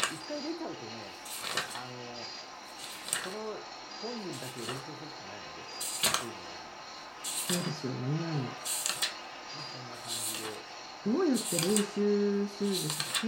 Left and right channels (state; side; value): identical; both; correlation 1.00